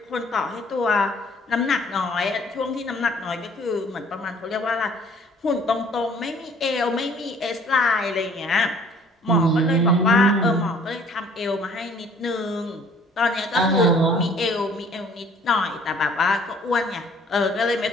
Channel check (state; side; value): normal; both; correlation 0.56